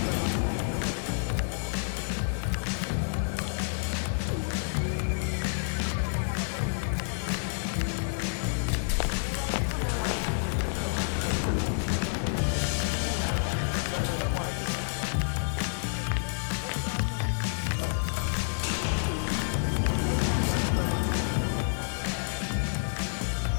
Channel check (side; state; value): right; silent; 58 dB below the other